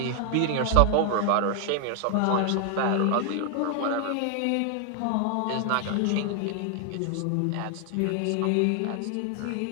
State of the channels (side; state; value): both; different; correlation 0.00